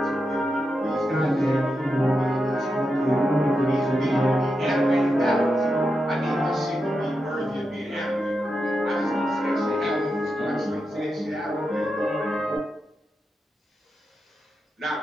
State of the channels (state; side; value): normal; both; correlation 0.87